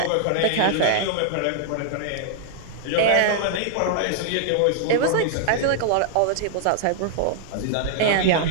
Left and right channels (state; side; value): different; both; correlation -0.01